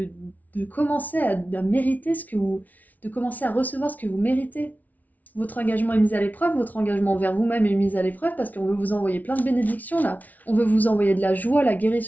commencer à mériter de commencer à recevoir ce que vous méritez. Votre engagement est mis à l'épreuve, votre engagement envers vous-même est mis à l'épreuve parce qu'on veut vous envoyer plein de bénédictions là. On veut vous envoyer de la joie, la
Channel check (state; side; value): late; right; 0.076 ms